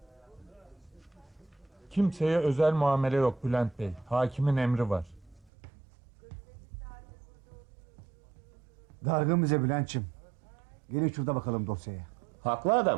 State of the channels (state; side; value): drops out; left; at 5.5 s